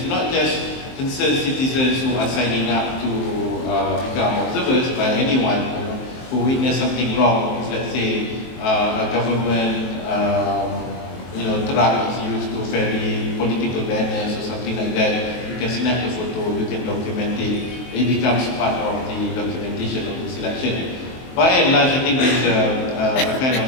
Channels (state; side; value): late; right; 23 ms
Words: not just concerned citizens who are signing up to become observers by anyone who witness something wrong. If, let's say, a government truck is used to ferry political banners or something like that, you can snap the photo, you can document it. It becomes part of the documentation of this election. By and large, I think there is a kind